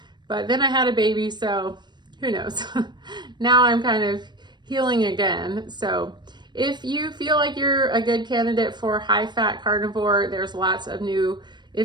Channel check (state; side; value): late; left; 0.22 ms